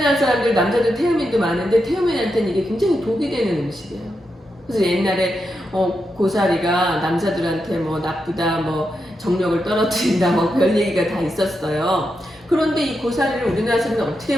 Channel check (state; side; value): normal; both; correlation 0.86